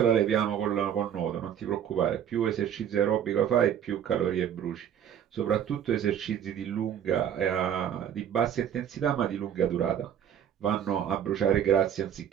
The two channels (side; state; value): left; quieter; 9.4 dB